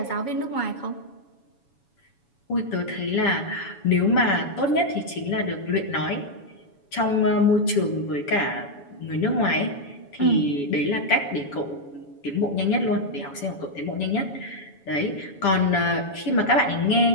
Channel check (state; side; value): late; right; 7.1 ms